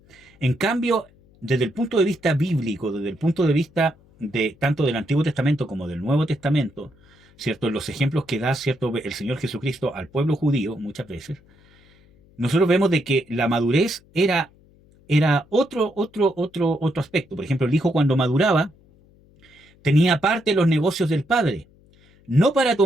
En cambio, desde el punto de vista bíblico, desde el punto de vista de tanto del Antiguo Testamento como del Nuevo Testamento, ¿cierto? En los ejemplos que da, ¿cierto?, el Señor Jesucristo al pueblo judío muchas veces, nosotros vemos de que la madurez era otro aspecto. Por ejemplo, el hijo cuando maduraba tenía parte de los negocios del padre, no para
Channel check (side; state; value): left; noise; hum, 29 dB below the sound